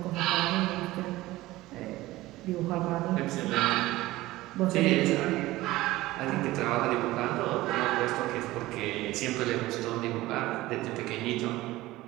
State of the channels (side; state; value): left; quieter; 17.8 dB